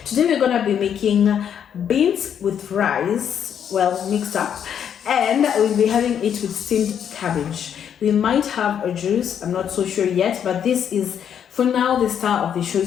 Today we're gonna be making beans with rice, well mixed up, and we'll be having it with steamed cabbage. We might have a juice, I'm not so sure yet, but this is for now the star of the show.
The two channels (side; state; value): right; quieter; 8.7 dB